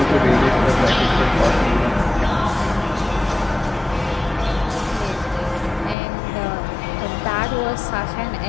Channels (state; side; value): drops out; right; at 6.0 s